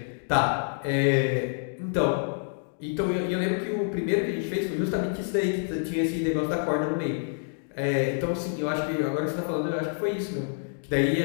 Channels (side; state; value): right; silent; digital silence